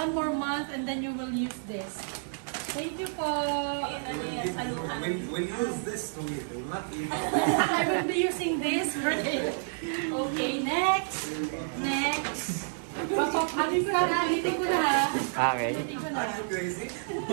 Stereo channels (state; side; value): silent; left; digital silence